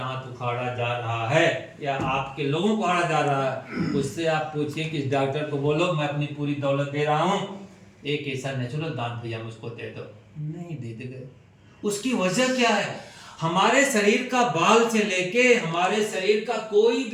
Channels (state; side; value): identical; both; correlation 1.00